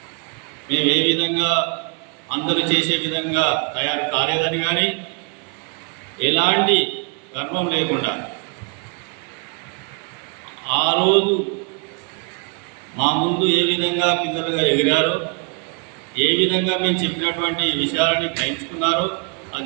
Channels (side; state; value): left; quieter; 34.9 dB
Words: మేము ఏ విధంగా అందరూ చేసే విధంగా తయారు కాలేదని కానీ ఎలాంటి గర్వం లేకుండా ఆ రోజు మా ముందు ఏ విధంగా పిల్లలుగా ఎగిరారో, ఏ విధంగా మేము చెప్పినటువంటి విషయాలని గ్రహించుకున్నారో